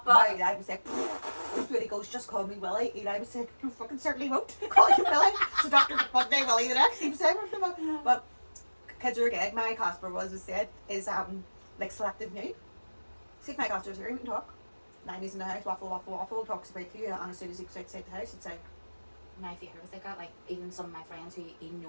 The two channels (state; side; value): inverted; both; correlation -1.00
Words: it. My Eli was like, when he goes, just call me Willie. Eli was like, you fucking certainly won't call you Willie. So Dr. one day Willie the next. He was saying, but kids are good. My Casper was said is like selective nude. See if my Casper's here, we can talk. 90s in the house, waffle, talks about to you, and as soon as he goes outside the house, it's like, my favourite was like that, like even some of my friends who he'd